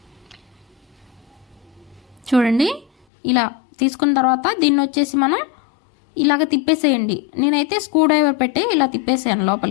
చూడండి ఇలా తీసుకున్న తర్వాత దీన్ని వచ్చేసి మనం ఇలాగ తిప్పేసేయండి. నేనైతే స్క్రూ డ్రైవర్ పెట్టి ఇలా తిప్పేసాను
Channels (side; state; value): right; drops out; at 3.1 s